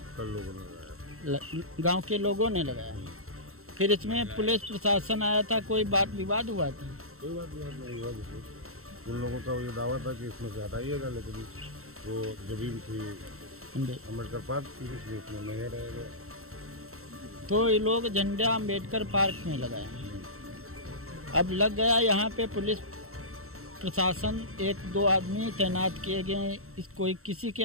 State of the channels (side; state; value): left; late; 0.63 ms